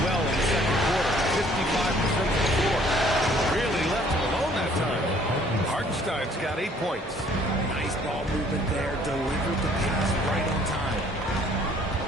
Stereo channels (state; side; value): normal; both; correlation 0.59